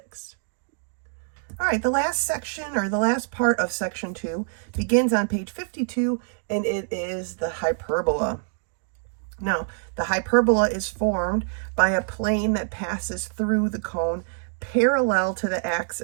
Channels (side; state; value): left; silent; digital silence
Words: All right, the last section, or the last part of Section 2, begins on page 52, and it is the hyperbola. Now, the hyperbola is formed by a plane that passes through the cone parallel to the